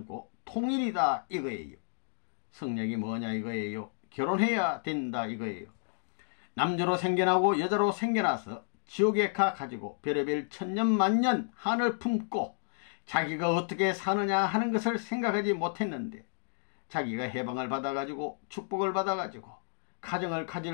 통일이다 이거예요. 성약이 뭐냐 이거예요. 결혼해야 된다 이거예요. 남자로 생겨나고 여자로 생겨나서 지옥에 가가지고 별의별 천년만년 한을 품고 자기가 어떻게 사느냐 하는 것을 생각하지 못했는데 자기가 해방을 받아가지고 축복을 받아가지고 가정을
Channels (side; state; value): right; silent; digital silence